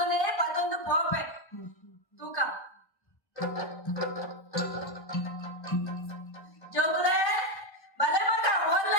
ಪತ್ತೊಂದು ಪೋಪೆ ತೂಕ ಜೋಗುಲೆ ಬಲೆ ಮಗ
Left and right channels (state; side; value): late; right; 1.1 ms